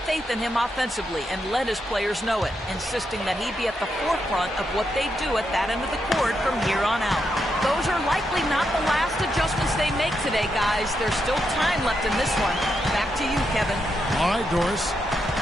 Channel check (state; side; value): normal; both; correlation 0.83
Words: faith in him offensively and let his players know it, insisting that he be at the forefront of what they do at that end of the court from here on out. Those are likely not the last adjustments they make today, guys. There's still time left in this one. Back to you, Kevin. All right, Doris.